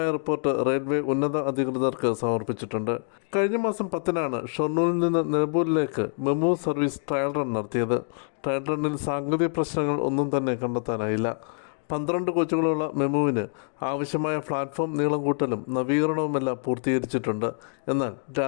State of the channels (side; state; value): right; silent; 61 dB below the other